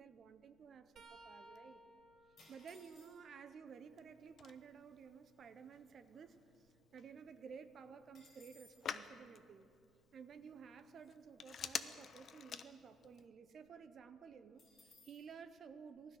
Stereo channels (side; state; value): right; noise; rumble, 24 dB below the sound